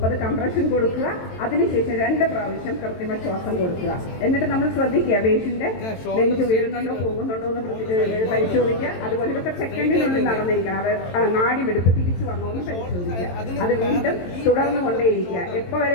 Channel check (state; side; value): late; right; 22 ms